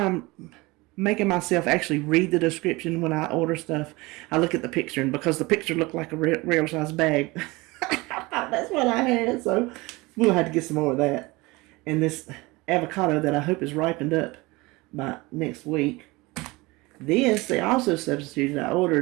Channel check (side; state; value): left; quieter; 22.8 dB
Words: making myself actually read the description when I order stuff. I look at the picture, and because the picture looked like a real size bag, I thought that's what I had. So we'll have to get some more of that. And this avocado that I hope is ripened up by next week. This, they also substituted. I